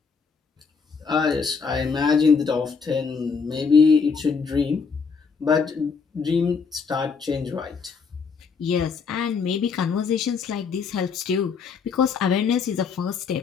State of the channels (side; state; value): right; quieter; 5.4 dB